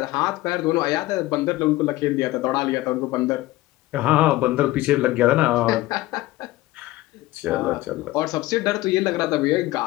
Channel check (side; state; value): right; quieter; 17.9 dB